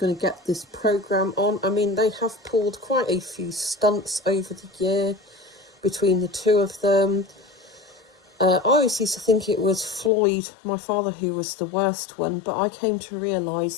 to get this programme on. I mean, they have pulled quite a few stunts over the year between the two of them. I always used to think it was Floyd, my father, who was the worst one, but I came to realise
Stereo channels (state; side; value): drops out; right; at 10.1 s